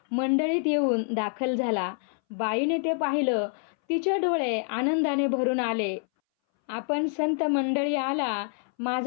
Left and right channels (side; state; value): right; silent; 60 dB below the other